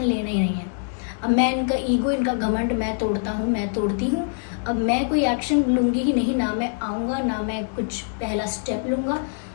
लेना ही नहीं है, अब मैं इनका ईगो, इनका घमंड मैं तोड़ता हूँ, मैं तोड़ती हूँ। अब मैं कोई एक्शन लूँगी ही नहीं, ना मैं आऊँगा, ना मैं कुछ पहला स्टेप लूँगा।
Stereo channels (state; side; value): silent; right; 63 dB below the other